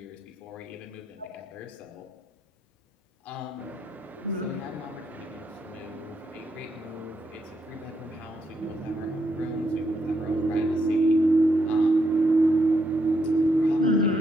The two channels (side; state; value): both; normal; correlation 0.78